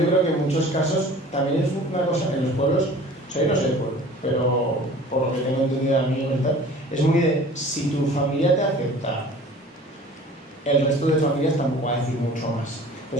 creo que en muchos casos también es una cosa, en los pueblos O sea, yo no sé, pero por lo que tengo entendido de amigos y tal, es muy de, si tu familia te acepta, el resto de familias tampoco va a decir mucho más.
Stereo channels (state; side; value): normal; both; correlation 0.45